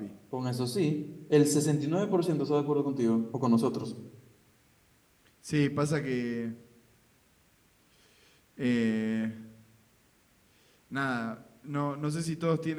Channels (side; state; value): both; identical; correlation 1.00